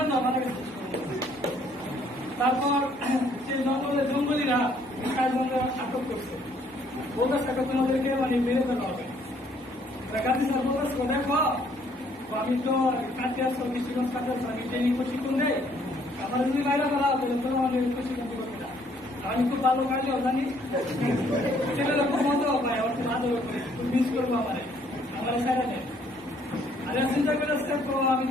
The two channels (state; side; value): normal; both; correlation 0.65